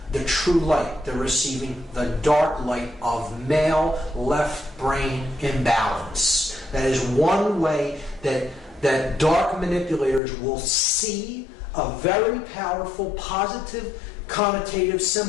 the true light. They're receiving the dark light of male left brain imbalance. That is one way that dark manipulators will see a very powerful, positive, connotative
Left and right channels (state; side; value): drops out; right; at 10.2 s